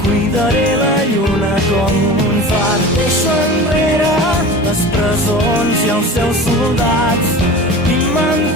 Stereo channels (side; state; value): both; normal; correlation 0.35